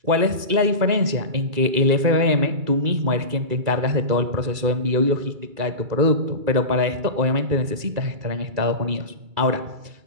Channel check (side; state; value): left; late; 2.3 ms